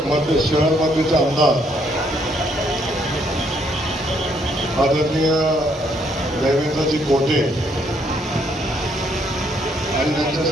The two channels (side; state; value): both; normal; correlation 0.70